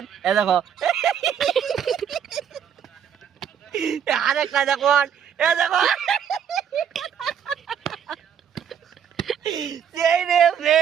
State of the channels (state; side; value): quieter; left; 8.4 dB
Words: এ দেখো আরেকটা দেখুন এ দেখো সেই রে